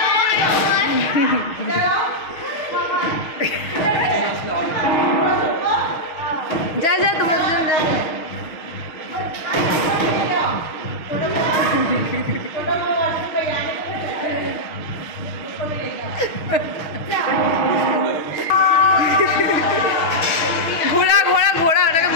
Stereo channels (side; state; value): right; late; 6.5 ms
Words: যা যা তোমার দুজন যা। ঘোড়া ঘোড়া ঘোড়া, ওটাকে